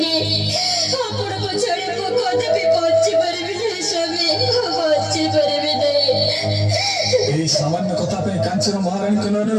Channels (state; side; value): identical; both; correlation 1.00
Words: आपण पछाड़े मु कदापि बची पारिबिनी स्वामी बची पारिबिनी এই সামান্য কথা पे কাঞ্চন মহারানী নয়নের